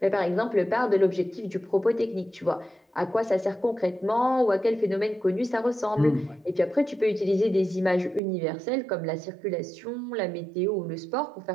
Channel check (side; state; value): left; drops out; at 8.2 s